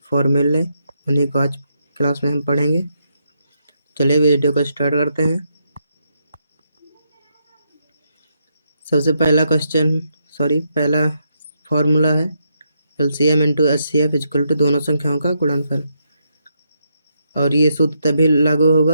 फॉर्मूले उन्हीं को आज क्लास में हम पढ़ेंगे। चलिए वीडियो को स्टार्ट करते हैं। सबसे पहला फॉर्मूला है LCM into HCF equal to दोनों संख्याओं का गुणनफल। और ये सूत्र तभी लागू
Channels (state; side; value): inverted; both; correlation -0.79